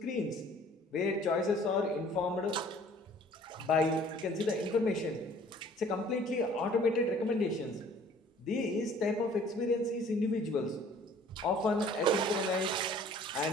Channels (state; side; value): normal; both; correlation 0.53